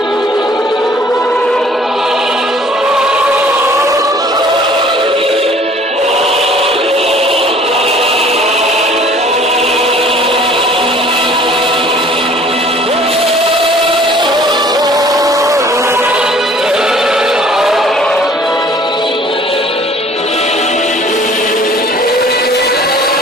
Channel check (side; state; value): both; normal; correlation 0.53